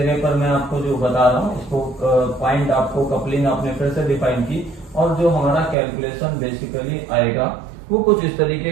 पर मैं आपको जो बता रहा हूँ इसको पॉइंट आपको कपलिंग आपने फिर से डिफाइन की और जो हमारा कैलकुलेशन बेसिकली आएगा वो कुछ इस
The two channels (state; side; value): drops out; left; at 5.8 s